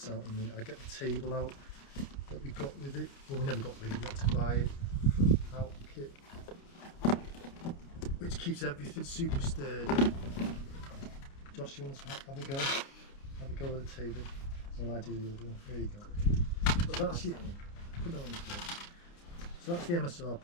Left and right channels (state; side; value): late; right; 29 ms